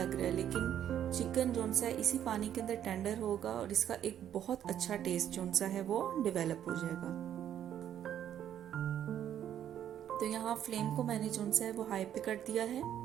रहा है, लेकिन चिकन जो सा है इसी पानी के अंदर टेंडर होगा, और इसका एक बहुत अच्छा टेस्ट जो सा है वो डेवलप हो जाएगा। तो यहाँ फ्लेम को मैंने जो सा है वो हाई पे कर दिया है।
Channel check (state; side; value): quieter; left; 10.3 dB